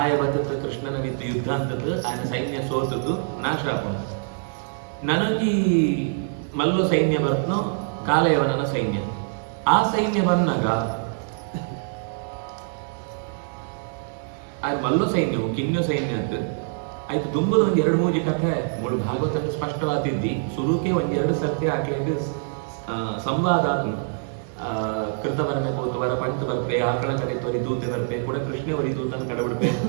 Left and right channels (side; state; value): left; silent; digital silence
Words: ಬತ್ತದ ಕೃಷ್ಣನ ವಿತ್ತು ಯುದ್ಧ ಅಂತದ್ದು ఆయన ಸೈನ್ಯ ಸೋತದ್ದು ನಾಶ ಆಪನು ನನಗೆ ಮಲ್ಲು ಸೈನ್ಯ ಬರ್ತನೋ ಕಾಲಯವನನ ಸೈನ್ಯ ಆ ಸೈನ್ಯ ಬಂದಾಗ ಆ ಮಲ್ಲು ಸೈನ್ಯವು ಕಿನ್ಯು ಸೈನ್ಯ ಅಂತ ಆಯ್ತು ತುಂಬದ ಒಂದ್ 2-3 ಕಥೆ ಮೂರು ಭಾಗವತಕ್ಕೆ ಸ್ಪಷ್ಟವಾದಿದ್ದಿ ಸುರುಕೆ 1-2 ಸರ್ತಿ ಹಾಕ್ಲಿಕ್ಕೆ ಸಂವಾದ ಕೃತ ಬರಬೇಕು ವರ ಪಂಚ ಬರ್ಪೆ ಆಕಳ ಕಡೆ ತೊರಿ ದೂತೆ ಬರ್ಪೆ ಕೂಡ ಕೃಷ್ಣ ವರಿ ದೂತನ ಕಡಬಿಡ್ಪೆ